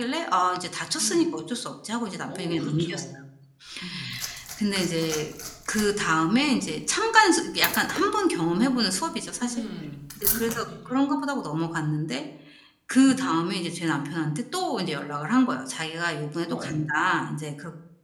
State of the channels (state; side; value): identical; both; correlation 1.00